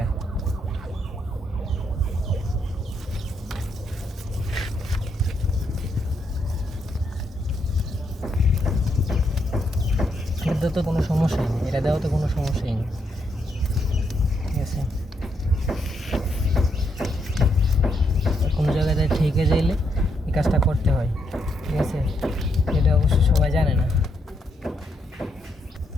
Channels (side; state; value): both; normal; correlation 0.77